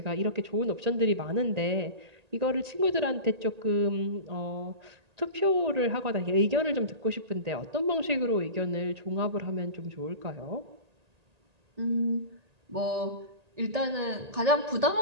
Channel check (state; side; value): late; left; 1.8 ms